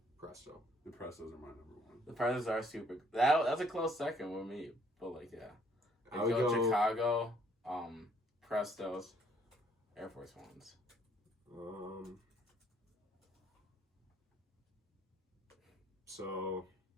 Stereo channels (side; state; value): both; normal; correlation 0.64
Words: Presto. The Prestos are my number one. The Prestos are super. That's a close second with me, but like yeah, I would go Chicago, Prestos, Air Force Ones. So